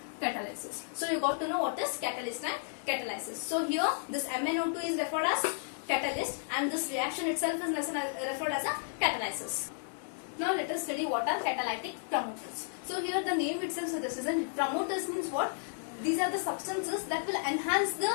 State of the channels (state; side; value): silent; right; 56 dB below the other